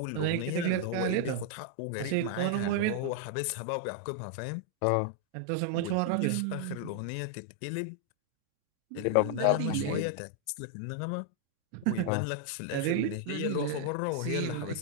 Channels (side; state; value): both; different; correlation 0.00